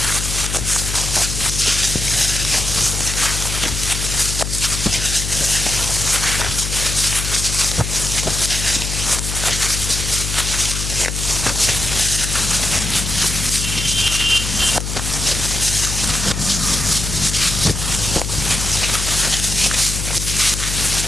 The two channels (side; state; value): left; noise; hum, 4 dB below the sound